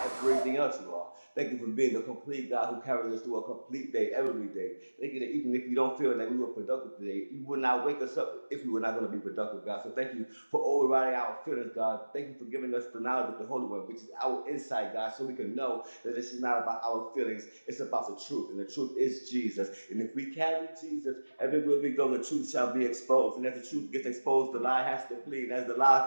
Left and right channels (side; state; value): both; inverted; correlation -1.00